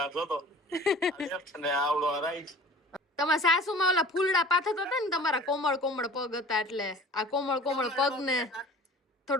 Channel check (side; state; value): both; normal; correlation 0.45